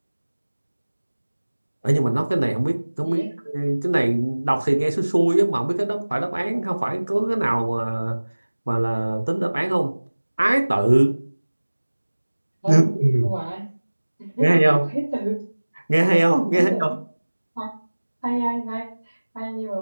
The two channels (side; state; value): both; inverted; correlation -1.00